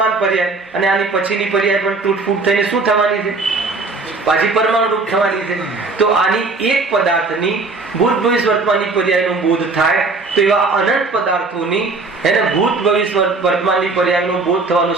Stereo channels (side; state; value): left; quieter; 3.8 dB